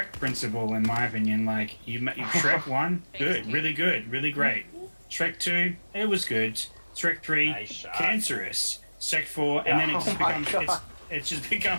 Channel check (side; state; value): both; inverted; correlation -1.00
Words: principle, in my opinion. Like you Shrek 1, good, really good, really great. Shrek 2, it was good. Shrek 3, Nice shot. cancerous. Shrek 4, and then it just